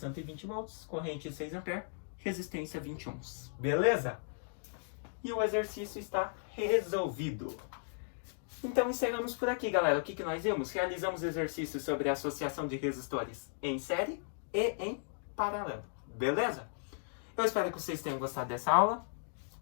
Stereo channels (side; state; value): right; silent; digital silence